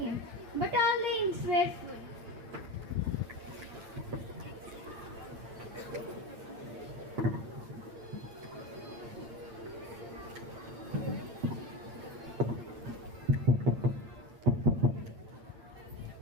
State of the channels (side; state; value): left; late; 8.8 ms